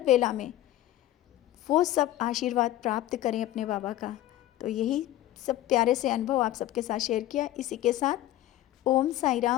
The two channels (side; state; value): right; quieter; 14.3 dB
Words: वेला में वो सब आशीर्वाद प्राप्त करें अपने बाबा का। तो यही सब प्यारे से अनुभव आप सबके साथ शेयर किया। इसी के साथ ओम साई